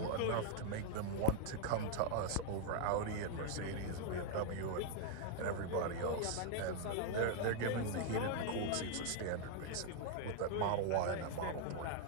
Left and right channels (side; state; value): both; different; correlation 0.00